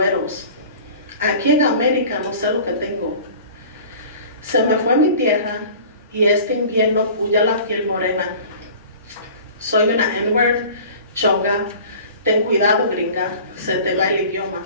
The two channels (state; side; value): inverted; both; correlation -0.43